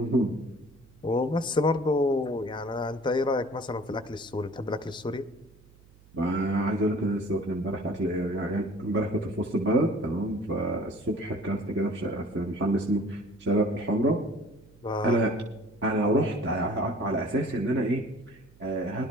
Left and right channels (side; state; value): right; noise; hum, 26 dB below the sound